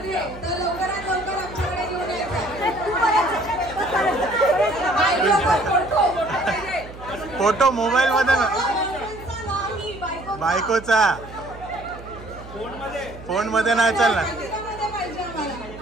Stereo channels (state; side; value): noise; right; hum, 16 dB below the sound